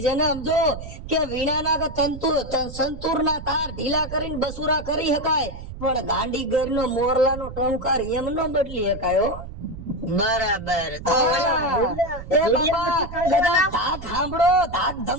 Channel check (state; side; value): noise; right; rumble, 11 dB below the sound